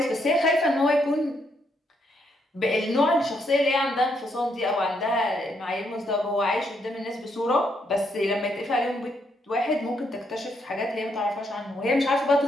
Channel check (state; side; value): normal; both; correlation 0.75